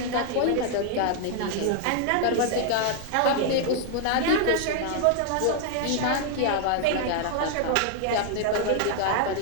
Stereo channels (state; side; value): different; both; correlation 0.00